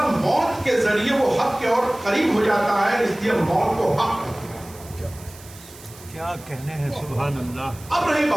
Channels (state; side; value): noise; right; hiss, 20 dB below the sound